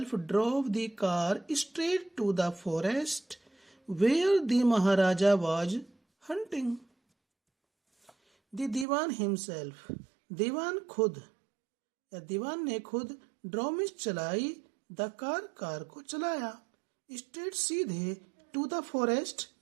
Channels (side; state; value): left; drops out; at 8.8 s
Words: drove the car straight to the forest where the Maharaja was hunting. The Diwan himself, दीवान खुद या दीवान ने खुद ड्रॉ में चलाई, द कार को चलाया, स्ट्रेट सीधे, टू द फॉरेस्ट